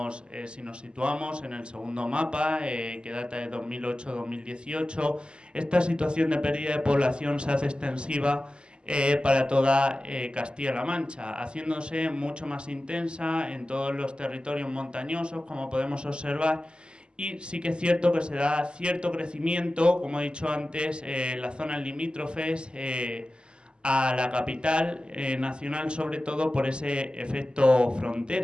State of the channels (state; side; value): late; left; 0.049 ms